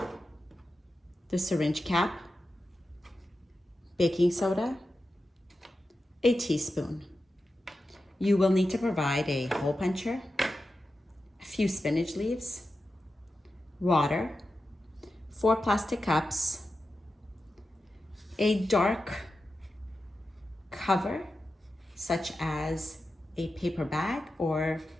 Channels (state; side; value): normal; both; correlation 0.91